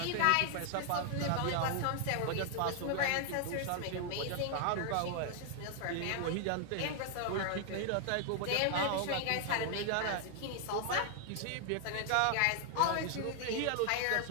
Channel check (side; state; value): both; different; correlation 0.00